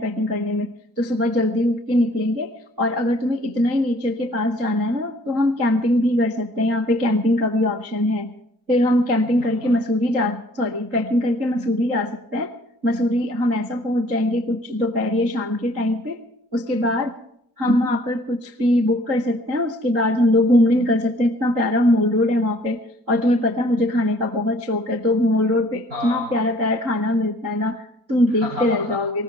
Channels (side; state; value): left; late; 3.9 ms